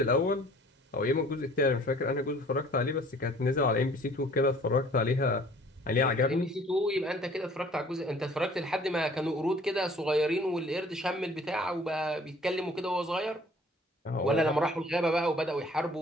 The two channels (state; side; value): normal; both; correlation 0.53